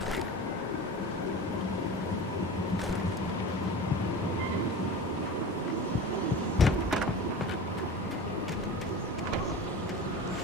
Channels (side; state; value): both; normal; correlation 0.33